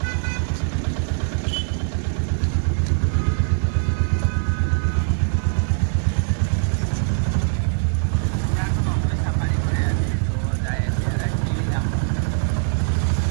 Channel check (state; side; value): silent; left; digital silence